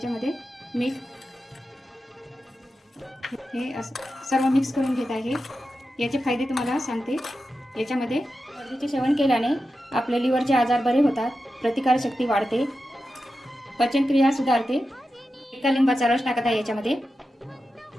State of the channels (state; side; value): normal; both; correlation 0.91